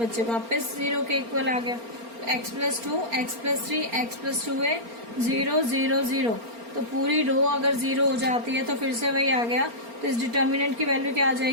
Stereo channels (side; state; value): left; late; 4.3 ms